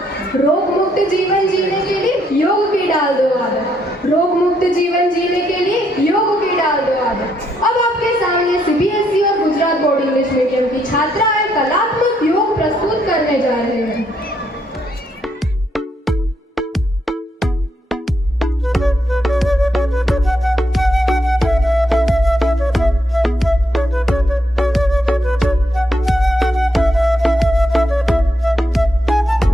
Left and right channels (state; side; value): normal; both; correlation 0.76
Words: रोग मुक्त जीवन जीने के लिए योग की डाल दो आदत. रोग मुक्त जीवन जीने के लिए योग की डाल दो आदत. अब आपके सामने सीबीएसई और गुजरात बोर्ड इंग्लिश मीडियम की छात्राएं कलात्मक योग प्रस्तुत करने जा रहे हैं.